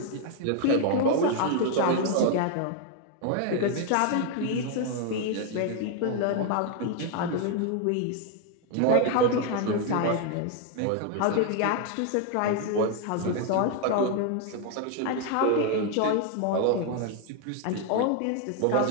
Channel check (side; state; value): both; different; correlation 0.01